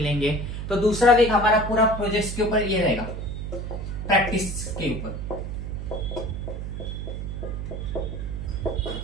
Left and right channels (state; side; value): noise; right; hum, 5 dB below the sound